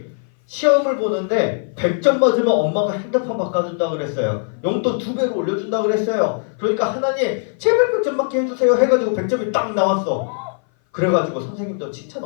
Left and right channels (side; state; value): right; silent; 57 dB below the other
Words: 시험을 보는데 100점 맞으면 엄마가 핸드폰 바꿔준다 그랬어요. 용돈 2배로 올려준다 그랬어요. 그러니까 하나님 제발 100점 맞게 해주세요 해가지고 100점이 딱 나왔어. 그래가지고 선생님도 칭찬